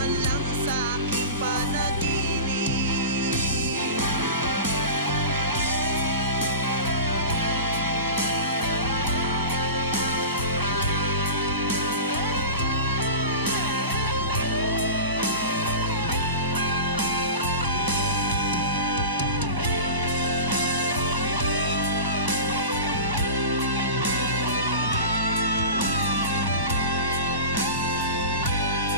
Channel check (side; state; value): both; inverted; correlation -0.31